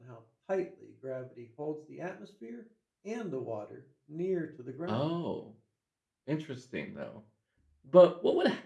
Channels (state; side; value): identical; both; correlation 1.00